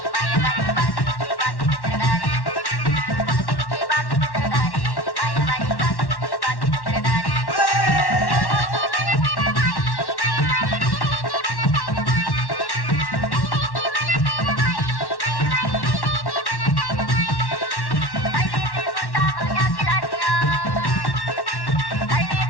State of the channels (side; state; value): right; late; 1.1 ms